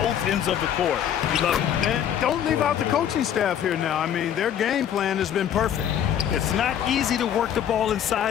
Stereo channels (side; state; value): right; quieter; 9.8 dB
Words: ends of the court. You love it. And don't leave out the coaching staff here now. I mean, their game plan has been perfect. It's not easy to work the ball